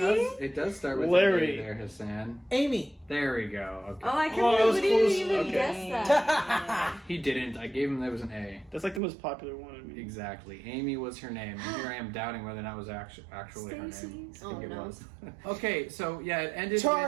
It does start with Larry. A there, Hassan. Amy. There we go. Okay. Oh, I can't Oh, that was believe you close. didn't even Okay. guess that. He didn't. I gave him there was an A. That's like the most popular one. I mean. Exactly. Amy was her name, and here I am doubting whether or not it was actually her name. Stacey? I think Oh, it no. was. Okay, so yeah, it ended.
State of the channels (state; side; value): drops out; left; at 9.0 s